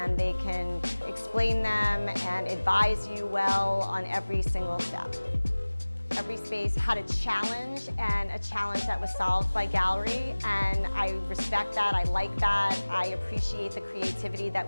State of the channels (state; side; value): inverted; both; correlation -1.00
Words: they can explain them and advise you well on every single step. Every space had a challenge, and a challenge that was solved by Gallery, and I respect that, I like that, I appreciate the creativity